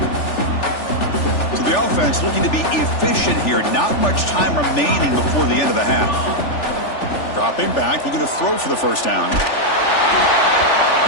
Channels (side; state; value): right; late; 3.4 ms